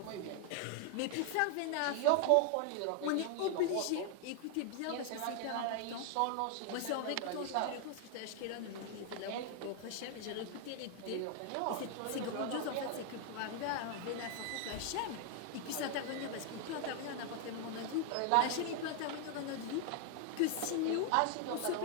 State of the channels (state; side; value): different; both; correlation 0.00